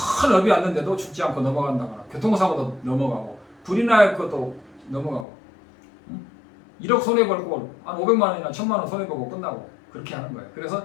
업이 왔는데도 죽지 않고 넘어간다거나 교통사고도 넘어가고 불이 날 것도 넘어가고 1억 손해벌고 한 500만 원이나 1000만 원 손해보고 끝나고 그렇게 하는 거예요. 그래서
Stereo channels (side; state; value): right; drops out; at 5.2 s